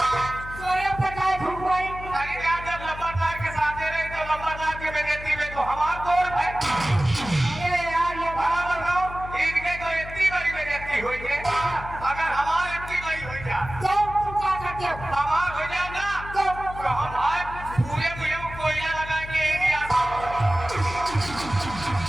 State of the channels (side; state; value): left; noise; hum, 12 dB below the sound